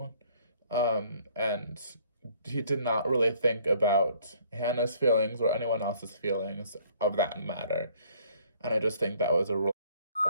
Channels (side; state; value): both; inverted; correlation -0.60